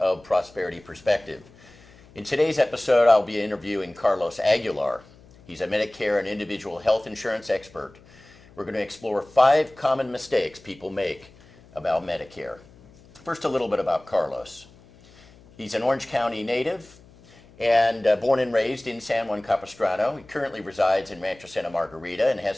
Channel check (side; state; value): left; noise; hum, 25 dB below the sound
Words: Prosperity Perspective. In today's episode, I'll be interviewing Carlos Aguilar. He's a Medicare and individual health insurance expert. We're going to explore 5 common mistakes people make about Medicare. First, a little bit about Carlos. He's an Orange County native and born and raised in San Juan Capistrano. He currently resides in Rancho Santa Margarita and